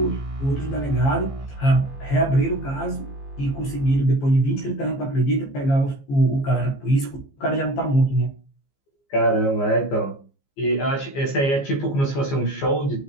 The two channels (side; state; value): right; late; 15 ms